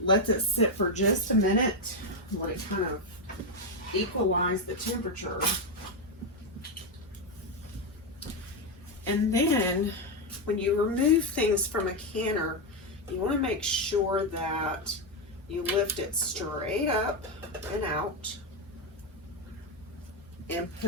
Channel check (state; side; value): normal; both; correlation 0.06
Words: let it sit for just a minute, let it kind of equalize the temperature. And then when you remove things from a canner, you want to make sure that you lift it straight up and out and